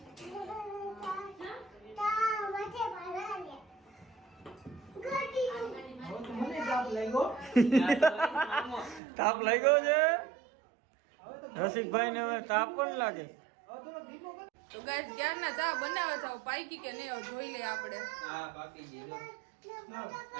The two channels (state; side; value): drops out; left; at 9.0 s